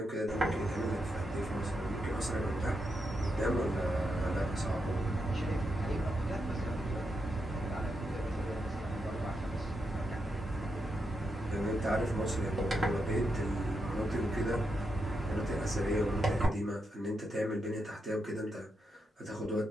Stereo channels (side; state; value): both; normal; correlation 0.84